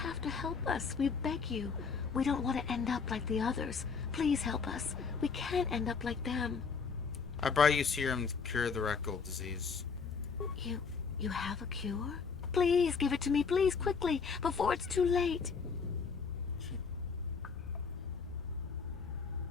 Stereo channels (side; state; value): right; quieter; 5.5 dB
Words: to help us. We beg you. We don't want to end up like the others. Please help us. We can't end up like them. I brought you serum to cure the rat ghoul disease. You have a cure? Please give it to me, please, quickly, before it's too late.